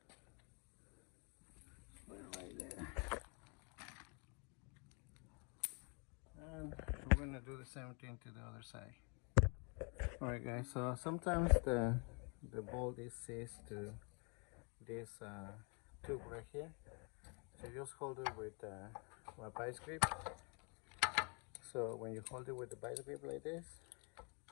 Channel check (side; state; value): right; quieter; 34.6 dB